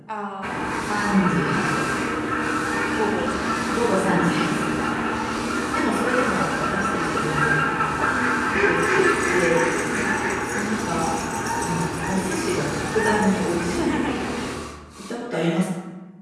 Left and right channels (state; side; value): identical; both; correlation 1.00